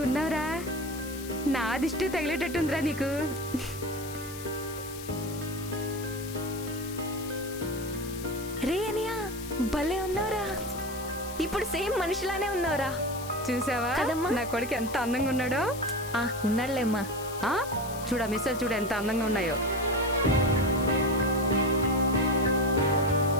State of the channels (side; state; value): left; noise; hiss, 13 dB below the sound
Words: ఉన్నావురా. నా దిష్టి తగిలేటట్టుందిరా నీకు. రే అనియా, భలే ఉన్నావురా. ఇప్పుడు సేమ్ మనిషిలానే ఉన్నావురా. చూసావా కదమ్మా? నా కొడుకు ఎంత అందంగా ఉన్నాడో. ఉన్నాడులేమ్మా. చూడ మిస్సలు చూడ ఎంత అందంగా ఉన్నాయో.